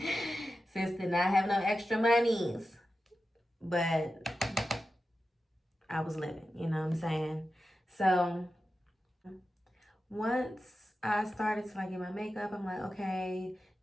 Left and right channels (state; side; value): normal; both; correlation 0.91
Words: Sis did not have no extra monies. But I was living, you know what I'm saying? So once I started to like get my makeup, I'm like, okay,